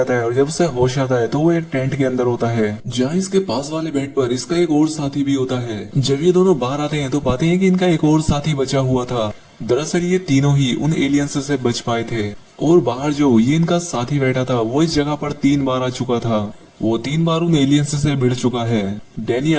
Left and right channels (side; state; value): both; identical; correlation 1.00